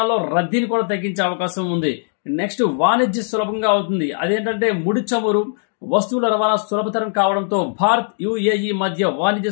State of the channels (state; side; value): silent; right; digital silence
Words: రద్దీని కూడా తగ్గించే అవకాశం ఉంది. నెక్స్ట్, వాణిజ్య సులభంగా అవుతుంది. అదేంటంటే ముడి చమురు వస్తువుల రవాణా సులభతరం కావడంతో భారత్ యుఏఈ మధ్య వాణిజ్య